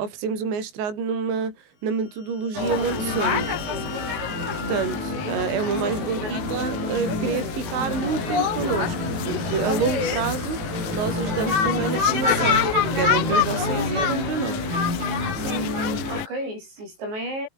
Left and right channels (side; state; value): left; late; 19 ms